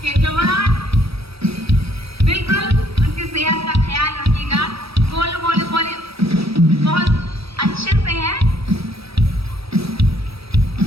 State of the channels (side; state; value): left; late; 0.77 ms